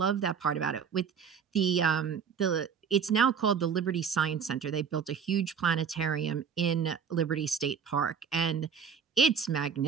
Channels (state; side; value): quieter; left; 6.9 dB